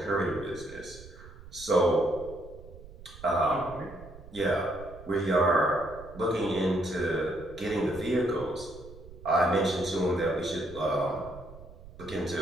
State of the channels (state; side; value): noise; right; rumble, 17 dB below the sound